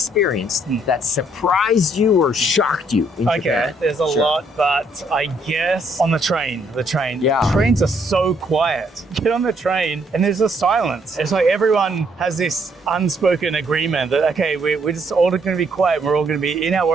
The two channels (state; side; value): normal; both; correlation 0.69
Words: that surprised you or shocked you in Okay, Japan. there's a Sure. lot, but I guess on the train. Yeah. Trains are so quiet. Get on the train and there's a silence. It's like everyone has this unspoken agreement that, okay, we're just all going to be quiet. We're all going to be in